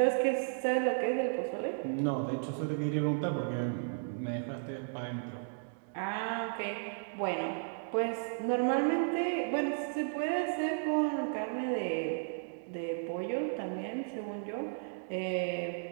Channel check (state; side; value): silent; left; digital silence